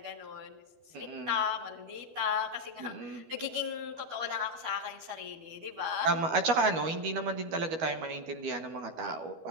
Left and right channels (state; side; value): late; left; 12 ms